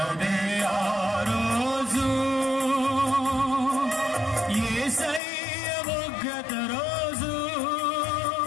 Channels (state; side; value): drops out; right; at 5.2 s